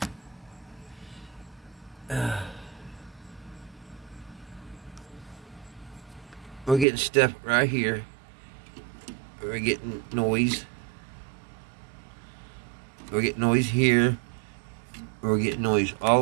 stuff right here. We're getting noise. We're getting noise here. We're getting noise all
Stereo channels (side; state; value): left; drops out; at 6.9 s